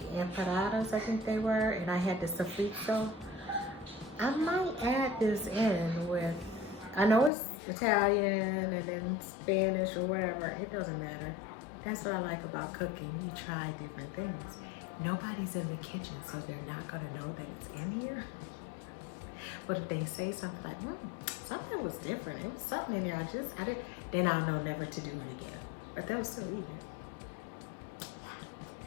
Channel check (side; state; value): right; drops out; at 7.3 s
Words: empanadas, I think they were, and I had the sofrito. I might add this in with, I know it's Italian and then Spanish or whatever, it doesn't matter. That's what I like about cooking. You try different things. Nobody's in the kitchen, so they're not gonna know that it's in here. But if they say something like, something was different, it was something in there, I didn't, then I'll know never to do it again. But they'll still eat it.